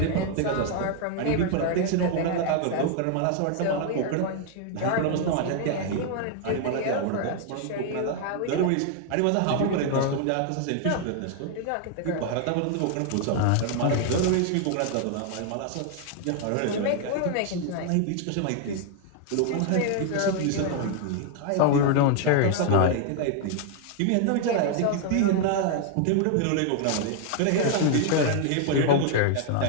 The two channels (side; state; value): both; different; correlation 0.00